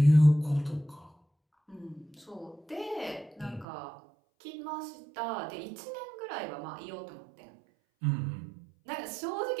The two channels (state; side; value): drops out; left; at 3.7 s